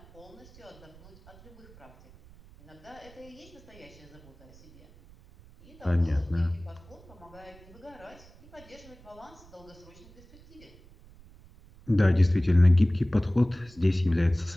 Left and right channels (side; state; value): right; noise; rumble, 23 dB below the sound